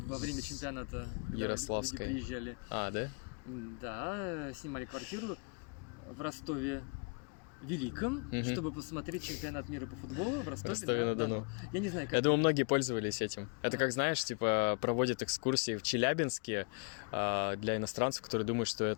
время чемпионата, когда люди приезжали. Да? Да, снимали квартиру в Ростове Великом, чтобы посмотреть чемпионат мира по футболу в Ростове-на-Дону. Я не знаю, как... Я думаю, многие пользовались этим. Это как, знаешь, типа проводят экскурсии в Челябинске для иностранцев, которые думают, что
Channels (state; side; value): quieter; right; 37.5 dB